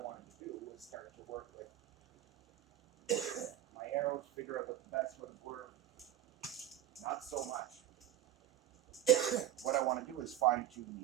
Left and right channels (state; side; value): quieter; left; 12.3 dB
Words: wanted to do is start to work with my arrows, figure out what the best ones were. Not so much. What I want to do is fine tune